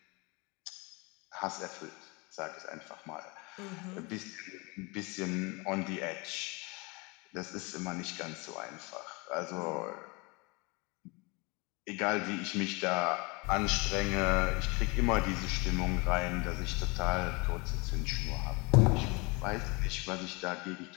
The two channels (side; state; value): right; quieter; 27.9 dB